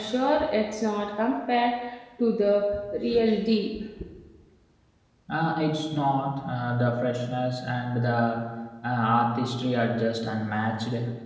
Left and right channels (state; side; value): identical; both; correlation 1.00